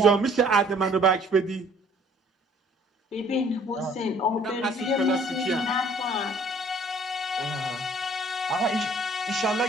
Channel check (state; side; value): normal; both; correlation 0.57